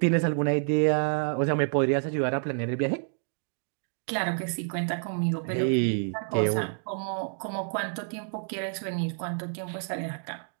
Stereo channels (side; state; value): left; silent; 59 dB below the other